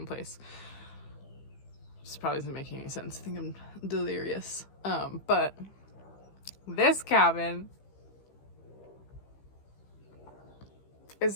place. This probably isn't making any sense. I think I'm delirious. But this cabin is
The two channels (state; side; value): late; right; 15 ms